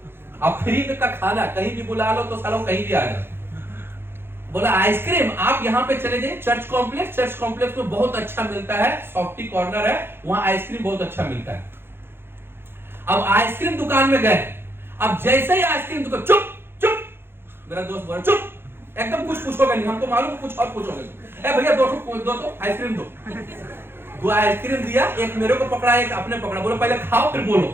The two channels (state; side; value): late; left; 0.11 ms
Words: अब फ्री का खाना कहीं भी बुला लो तो सालों कहीं भी आ जाए। बोला आइसक्रीम आप यहाँ पे चले जाइए, चर्च कॉम्प्लेक्स में बहुत अच्छा मिलता है, सॉफ्टी कॉर्नर है, वहां आइसक्रीम बहुत अच्छा मिलता है। अब आइसक्रीम दुकान में गए, अब जैसे ही आइसक्रीम दुकान, चुप चुप, मेरा दोस्त बोला चुप, एकदम कुछ पूछोगे नहीं, हमको मालूम कुछ और पूछोगे। ए भैया दो आइसक्रीम दो आइसक्रीम दिया, एक मेरे को पकड़ा, एक अपने पकड़ा, बोलो पहले खाओ फिर बोलो,